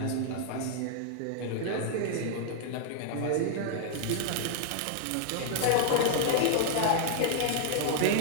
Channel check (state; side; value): different; both; correlation -0.01